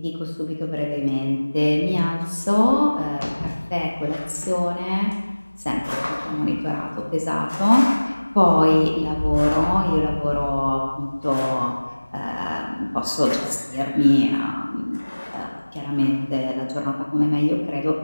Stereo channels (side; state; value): both; inverted; correlation -1.00